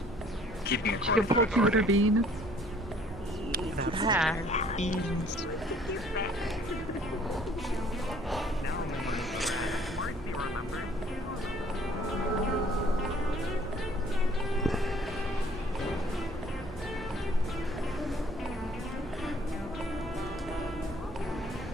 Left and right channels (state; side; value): normal; both; correlation 0.57